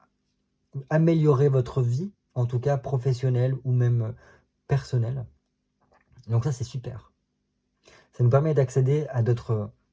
améliorer votre vie, en tout cas professionnelle ou même personnelle. Donc ça, c'est super. Ça nous permet d'accéder à d'autres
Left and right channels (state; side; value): identical; both; correlation 1.00